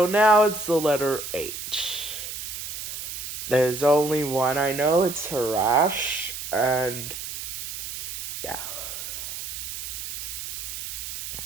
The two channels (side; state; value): right; noise; hiss, 7 dB below the sound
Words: now it's the letter H. There's only one I know, it's Harash, and yeah.